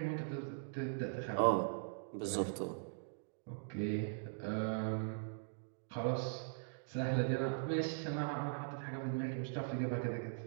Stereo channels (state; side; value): silent; left; digital silence